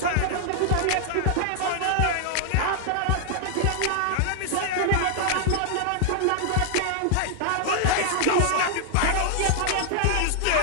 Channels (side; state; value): both; different; correlation 0.00